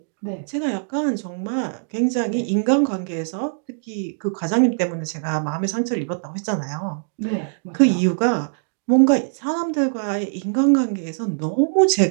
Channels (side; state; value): left; silent; digital silence